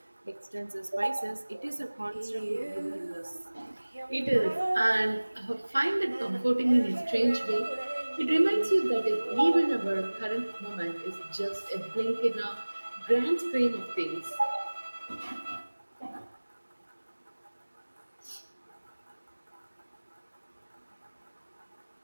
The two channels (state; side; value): inverted; both; correlation -1.00